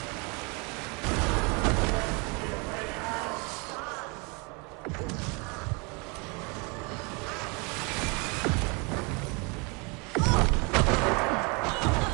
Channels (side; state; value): left; quieter; 30.9 dB